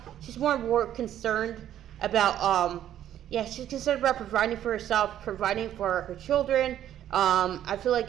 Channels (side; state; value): left; quieter; 11.3 dB